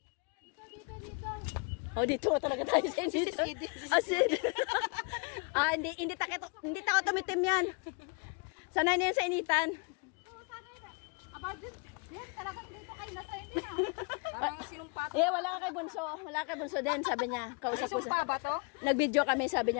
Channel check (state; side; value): quieter; right; 34.2 dB